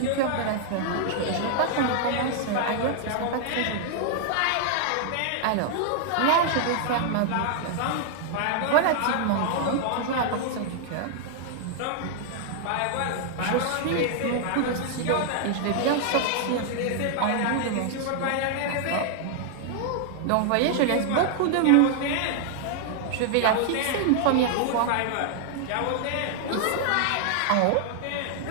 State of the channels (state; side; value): different; both; correlation 0.00